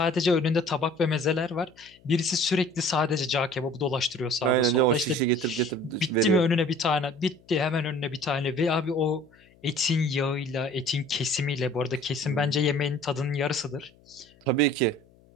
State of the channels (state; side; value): noise; left; hum, 29 dB below the sound